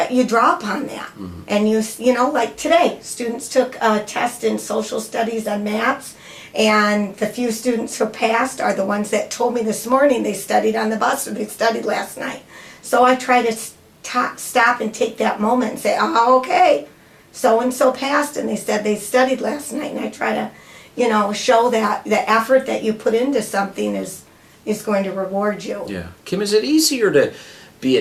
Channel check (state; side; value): identical; both; correlation 1.00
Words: you draw upon that. Mm-hmm. And like today, students took a test in social studies on maps, and the few students who passed are the ones that told me this morning they studied on the bus, or they studied last night. So I try to stop and take that moment and say, oh, okay, so-and-so passed, and they said they studied last night, and I try to show that the effort that you put into something is going to reward you. Yeah. Kym, is it easier to be